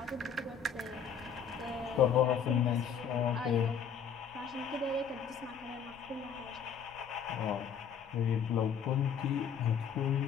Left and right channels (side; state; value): right; quieter; 7.2 dB